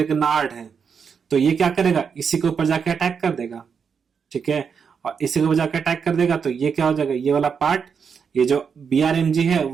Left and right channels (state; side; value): quieter; left; 6.4 dB